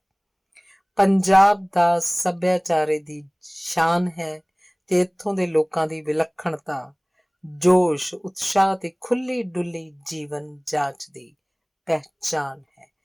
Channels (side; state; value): both; identical; correlation 1.00